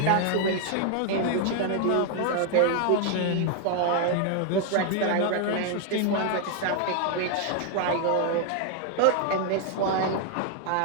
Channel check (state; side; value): different; both; correlation 0.00